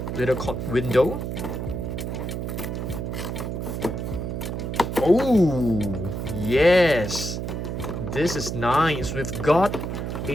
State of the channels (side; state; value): right; noise; hum, 4 dB below the sound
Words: little window. Oh, yes. This is nice. We've got